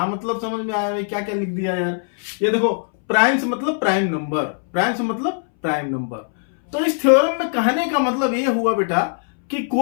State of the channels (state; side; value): silent; right; 63 dB below the other